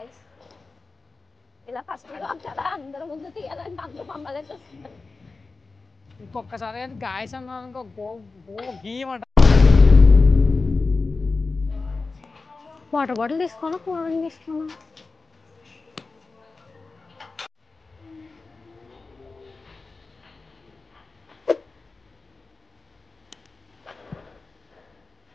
ఇలా ఫస్ట్ కదా అందరి ముందు తీయాలంటే అందరూ మమ్మల్ని చూస్తున్నారు. ఇంకొకసారి గాయస్ అన్నాను ఇంకో గీయమంట. వాటర్ బాటిల్ తీసుకోనా, కూల్ డ్రింక్ తీసుకోనా?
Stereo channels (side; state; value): right; quieter; 3.9 dB